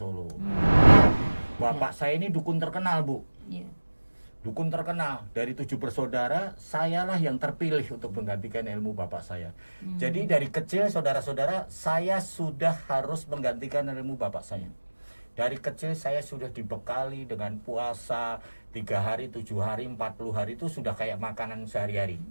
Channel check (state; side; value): inverted; both; correlation -1.00